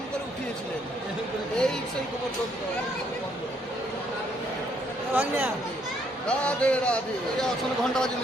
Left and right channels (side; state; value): both; normal; correlation 0.70